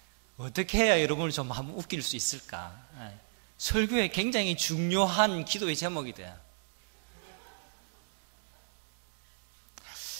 어떻게 해야 여러분을 좀 한번 웃길 수 있을까? 설교에 굉장히 중요한 기도의 제목이 돼요.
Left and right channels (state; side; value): silent; left; digital silence